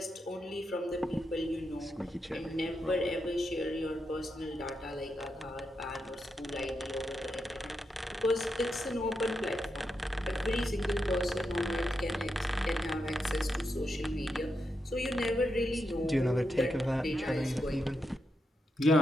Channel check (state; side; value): normal; both; correlation 0.85